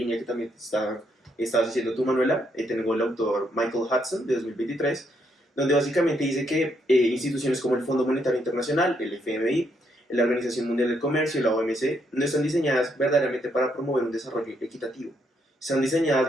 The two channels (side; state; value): both; normal; correlation 0.75